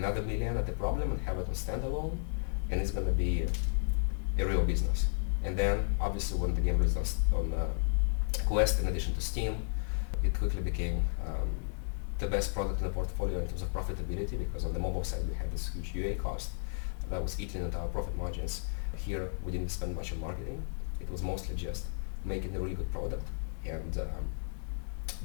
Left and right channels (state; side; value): silent; right; digital silence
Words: $1 million at the problem and have it on standalone, and it's going to be a real business. And then obviously when the game released on Quest, in addition to Steam, it quickly became the best product in the portfolio in terms of profitability, because on the mobile side we had this huge UA cost that was eating into our profit margins. Here we didn't spend much on marketing. It was mostly just making a really good product and